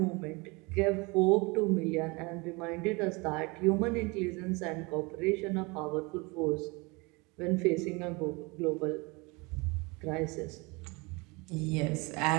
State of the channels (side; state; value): left; quieter; 26.8 dB